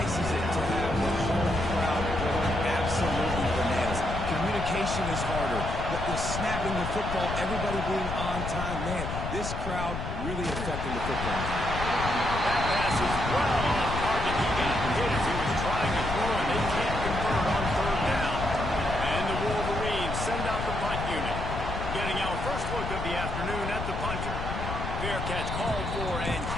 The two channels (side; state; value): left; noise; rumble, 5 dB below the sound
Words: is it to have the home crowd going absolutely bananas? Communication is harder. The snapping the football, everybody being on time. Man, this crowd really affecting the football. That pass is well off target. He got hit as he was trying to throw, and they can't convert on 3rd down. And the Wolverines send out the punt unit. Getting our first look of the afternoon at the punter. Fair catch called for and